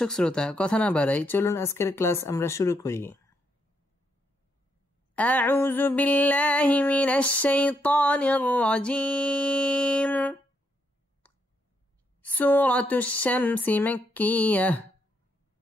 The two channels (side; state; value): both; normal; correlation 0.77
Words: শ্রোতা, কথা না বাড়াই চলুন আজকের ক্লাস আমরা শুরু করি। আউযু বিল্লাহি মিনাশ শাইতানির রাজীম। সূরাতুশ শামস মাক্কিয়াহ।